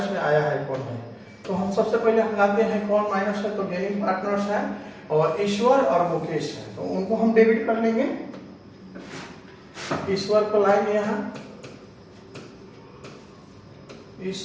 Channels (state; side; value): identical; both; correlation 1.00